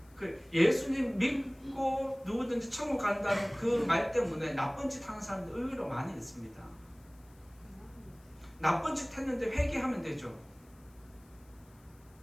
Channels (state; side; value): noise; left; hiss, 30 dB below the sound